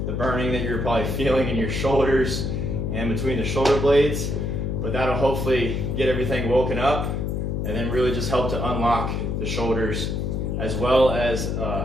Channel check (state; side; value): noise; left; hum, 1 dB below the sound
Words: the burning that you're probably feeling in your shoulders and between the shoulder blades. But that'll hopefully get everything woken up and then really just help to unlock the shoulders as well as